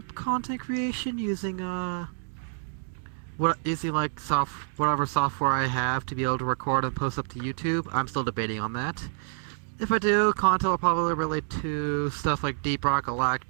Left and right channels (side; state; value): left; silent; digital silence